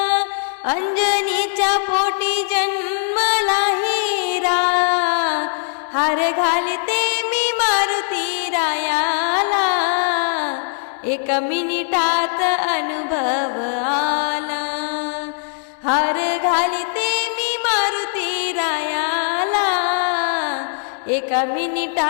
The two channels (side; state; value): right; silent; 62 dB below the other